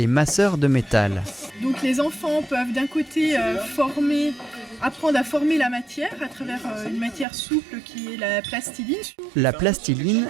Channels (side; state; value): left; drops out; at 7.2 s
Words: masseurs de métal. Donc les enfants peuvent d'un côté apprendre à former la matière à travers une matière souple qui est la plastiline. La plastiline